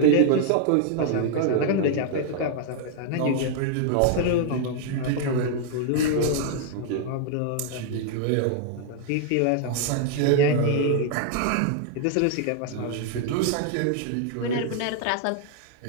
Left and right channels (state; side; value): different; both; correlation -0.01